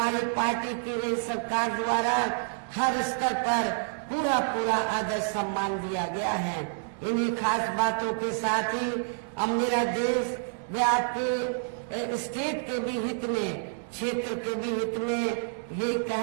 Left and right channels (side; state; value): left; silent; 59 dB below the other